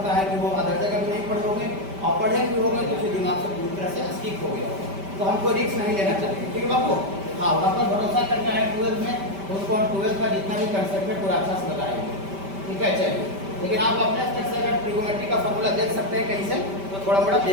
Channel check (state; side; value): late; left; 5.1 ms